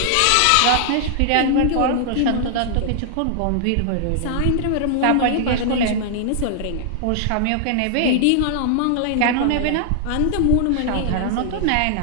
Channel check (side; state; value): both; different; correlation -0.01